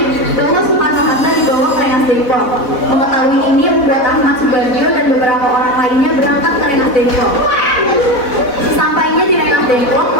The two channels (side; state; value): right; late; 4.0 ms